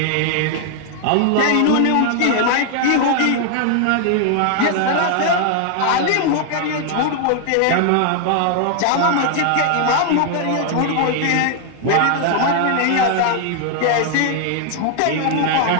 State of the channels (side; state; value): both; different; correlation 0.00